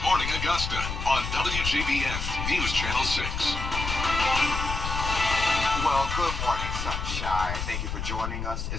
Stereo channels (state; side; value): noise; left; rumble, 4 dB below the sound